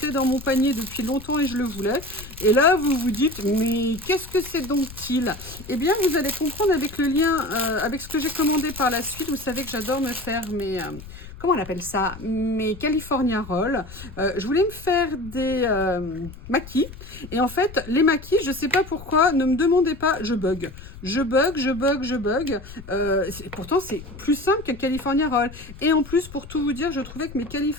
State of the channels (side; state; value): left; noise; rumble, 15 dB below the sound